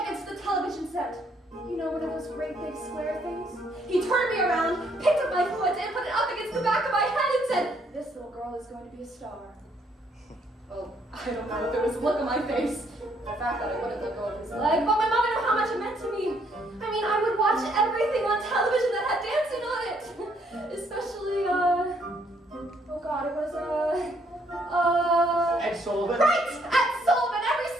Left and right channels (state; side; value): normal; both; correlation 0.69